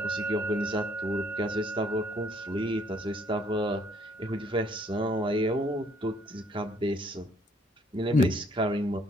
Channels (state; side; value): normal; both; correlation 0.64